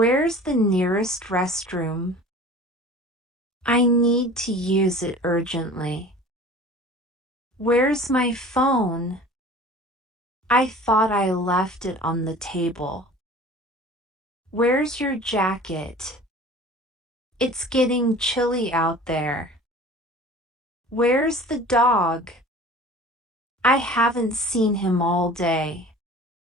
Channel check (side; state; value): both; normal; correlation 0.42